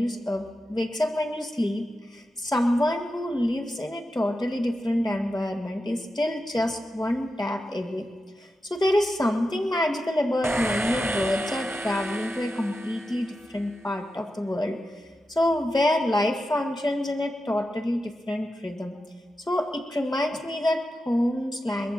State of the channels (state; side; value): normal; both; correlation 0.90